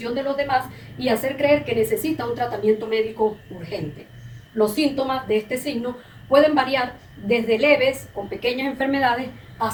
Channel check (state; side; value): identical; both; correlation 1.00